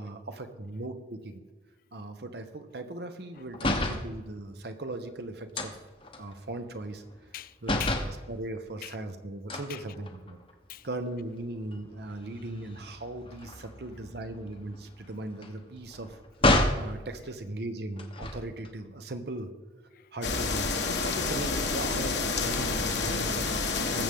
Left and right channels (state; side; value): normal; both; correlation 0.36